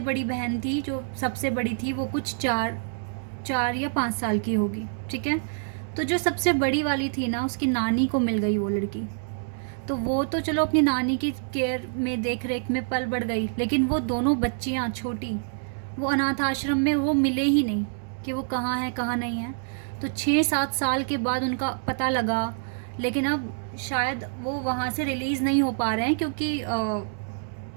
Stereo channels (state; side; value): silent; left; digital silence